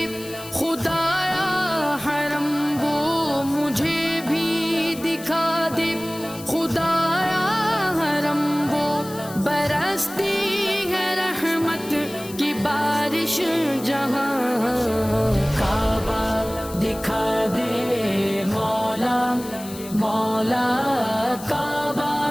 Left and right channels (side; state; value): left; noise; hiss, 15 dB below the sound